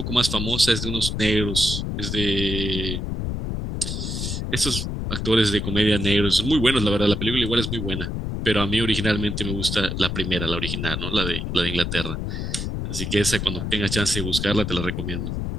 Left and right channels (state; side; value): noise; left; rumble, 3 dB below the sound